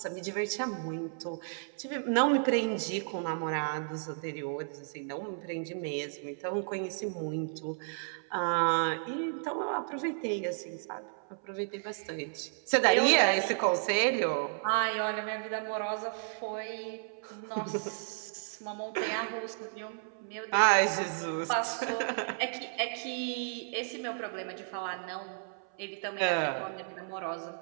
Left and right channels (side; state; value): left; silent; 56 dB below the other